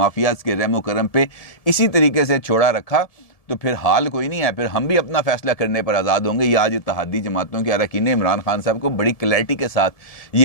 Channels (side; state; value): right; late; 1.7 ms